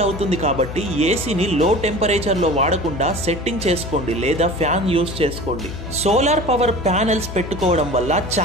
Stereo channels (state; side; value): noise; left; hum, 9 dB below the sound